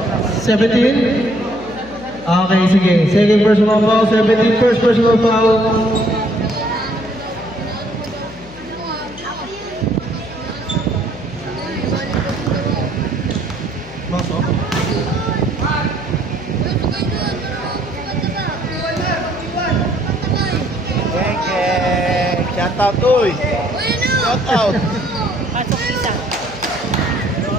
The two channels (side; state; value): left; noise; hum, 18 dB below the sound